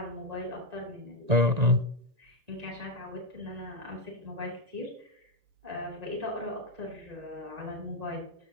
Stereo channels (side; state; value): left; late; 1.9 ms